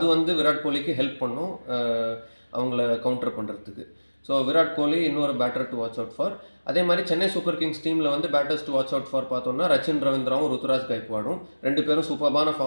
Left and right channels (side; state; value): both; inverted; correlation -1.00